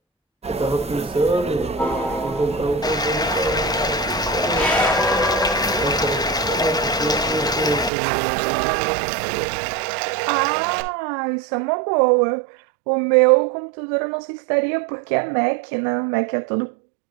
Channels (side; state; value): left; drops out; at 7.9 s